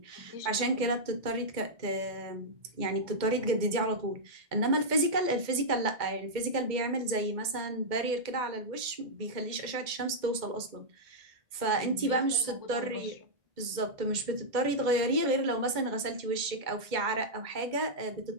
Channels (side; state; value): left; late; 2.1 ms